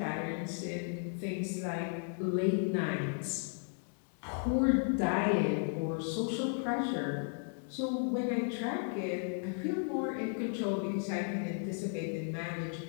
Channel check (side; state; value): right; silent; 55 dB below the other